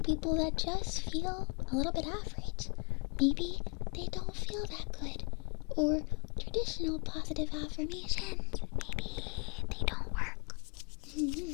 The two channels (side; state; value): right; quieter; 35.2 dB